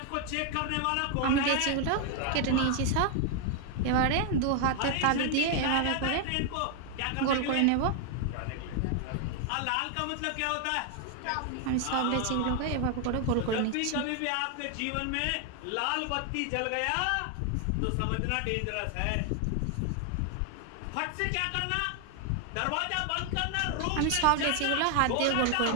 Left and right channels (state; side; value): different; both; correlation 0.00